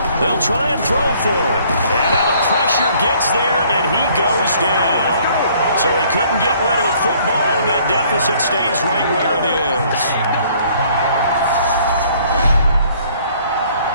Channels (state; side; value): inverted; both; correlation -0.60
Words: They'll try and throw for it. And now the pressure gets there, and he goes down. So he couldn't get rid of the football, and that deficit stays right where it is.